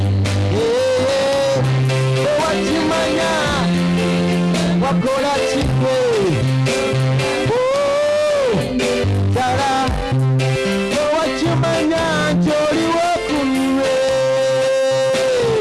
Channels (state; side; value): identical; both; correlation 1.00